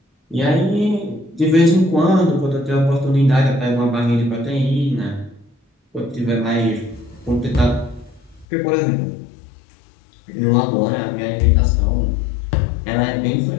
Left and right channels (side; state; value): right; drops out; at 8.5 s